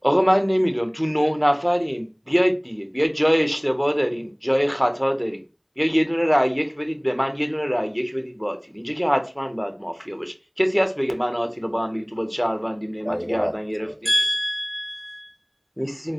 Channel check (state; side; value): identical; both; correlation 1.00